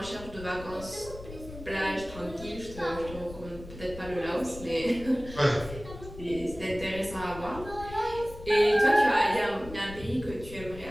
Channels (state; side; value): noise; left; rumble, 14 dB below the sound